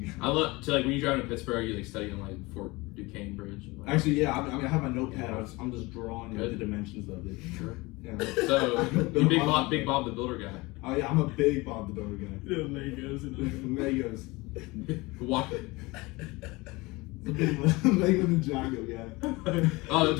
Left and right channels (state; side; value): quieter; right; 23.1 dB